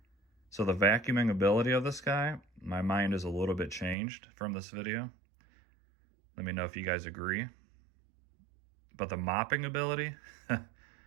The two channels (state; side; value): drops out; left; at 4.0 s